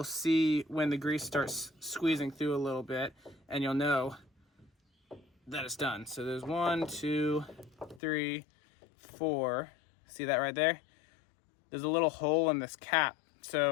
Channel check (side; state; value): right; drops out; at 8.0 s